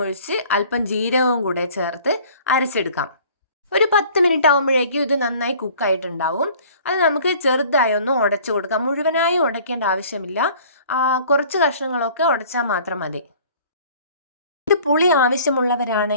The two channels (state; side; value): inverted; both; correlation -0.51